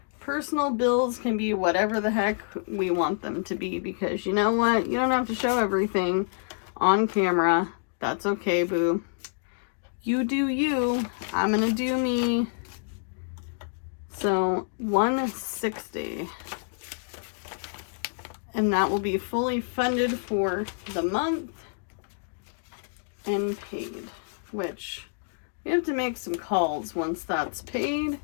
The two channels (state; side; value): silent; right; digital silence